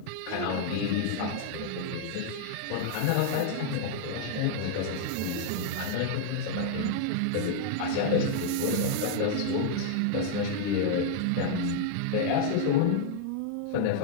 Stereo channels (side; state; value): both; different; correlation -0.01